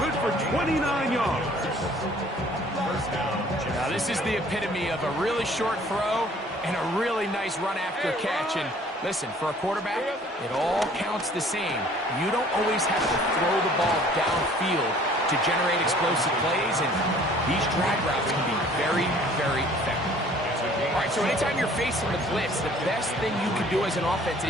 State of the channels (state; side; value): normal; both; correlation 0.54